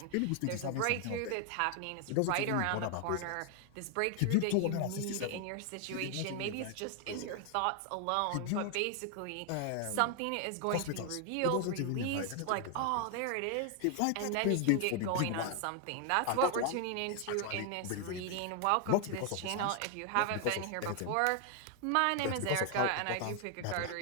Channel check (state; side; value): different; both; correlation 0.00